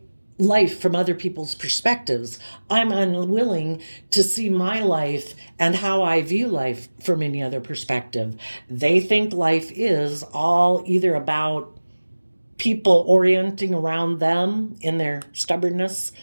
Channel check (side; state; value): both; inverted; correlation -1.00